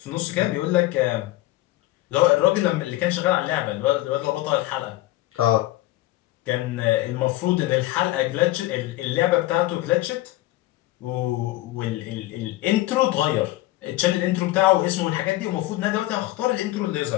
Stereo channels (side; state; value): right; quieter; 17.0 dB